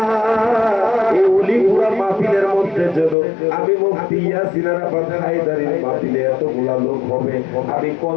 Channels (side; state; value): right; drops out; at 3.2 s